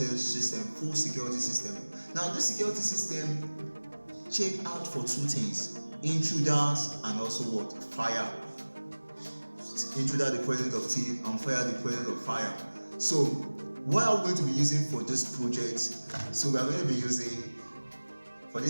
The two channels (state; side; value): inverted; both; correlation -1.00